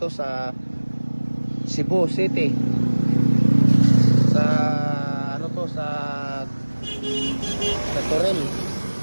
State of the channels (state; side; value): inverted; both; correlation -1.00